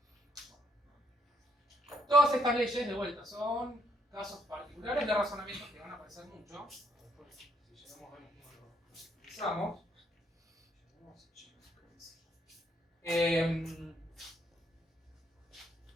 Todas estas leyes, de vuelta, son casos particulares de razonamientos que van a aparecer mucho. Después, si llegamos a ver cómo lo utilizamos.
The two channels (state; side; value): normal; both; correlation 0.71